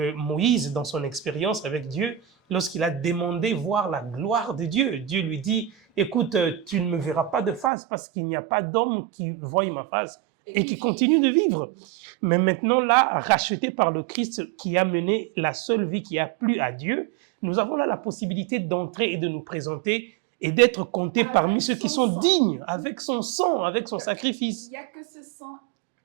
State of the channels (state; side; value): drops out; left; at 7.7 s